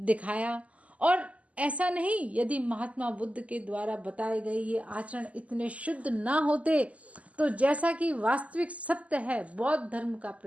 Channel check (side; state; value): left; late; 0.068 ms